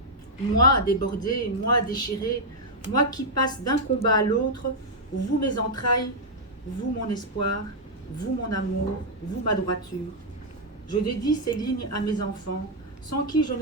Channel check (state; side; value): normal; both; correlation -0.03